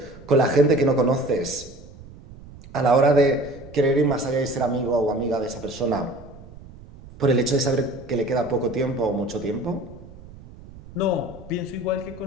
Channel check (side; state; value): right; noise; rumble, 18 dB below the sound